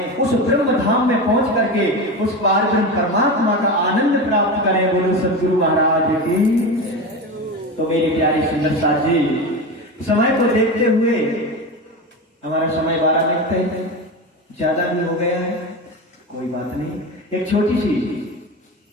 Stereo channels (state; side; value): normal; both; correlation 0.23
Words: उस ब्रह्म धाम में पहुंच करके उस पारब्रह्म परमात्मा का आनंद प्राप्त करें। बोलो सदगुरु महाराज की। तो मेरे प्यारे सुंदर साथ जी, समय को देखते हुए हमारा समय 12 मिनट है, ज्यादा भी हो गया है, कोई बात नहीं। एक छोटी सी